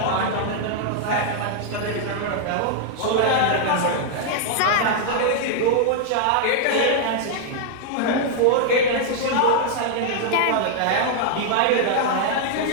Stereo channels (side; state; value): both; different; correlation -0.01